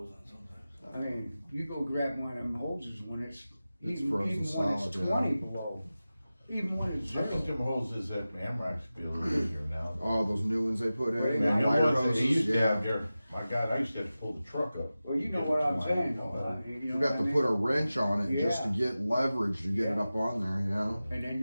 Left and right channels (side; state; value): both; inverted; correlation -0.95